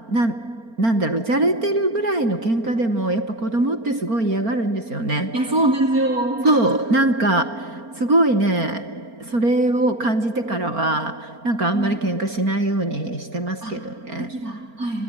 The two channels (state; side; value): late; left; 4.4 ms